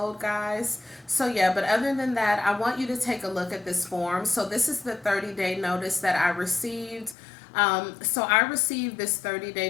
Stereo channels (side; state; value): right; drops out; at 7.2 s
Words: guys. So, yeah, but other than that, I want you to take a look at this form. So, this is the 30-day notice that I received. So, I received this